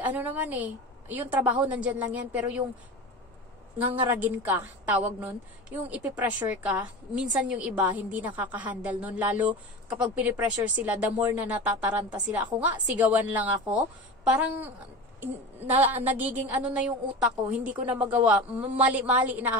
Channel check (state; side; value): normal; both; correlation 0.30